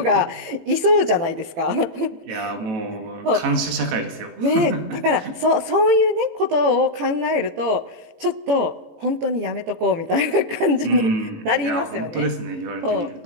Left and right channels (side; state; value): left; late; 18 ms